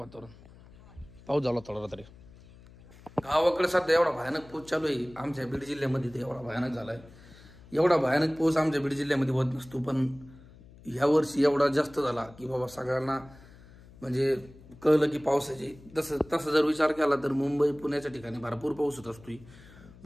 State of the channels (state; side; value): noise; left; hum, 22 dB below the sound